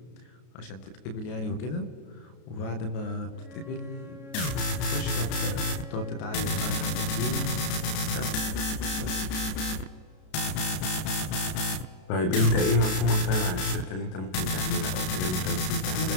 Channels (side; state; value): right; late; 33 ms